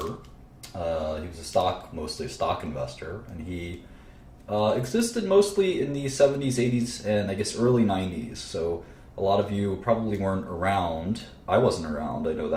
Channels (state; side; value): identical; both; correlation 1.00